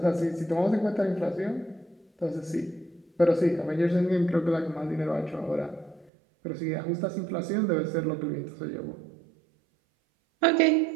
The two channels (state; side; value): drops out; left; at 6.1 s